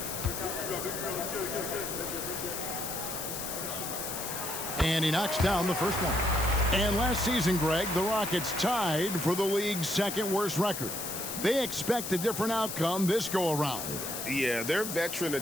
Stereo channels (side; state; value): left; noise; hiss, 5 dB below the sound